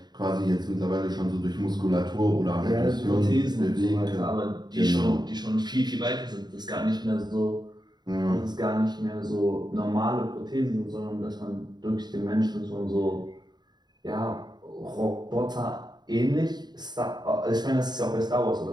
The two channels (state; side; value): late; left; 0.20 ms